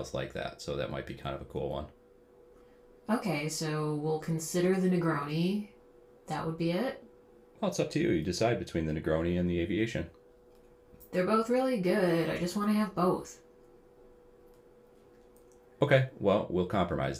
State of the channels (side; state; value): both; identical; correlation 1.00